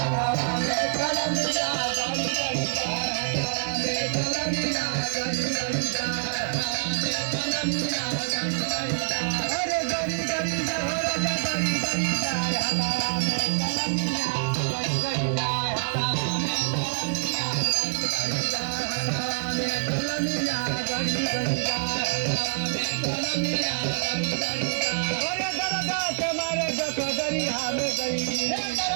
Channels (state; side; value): silent; left; digital silence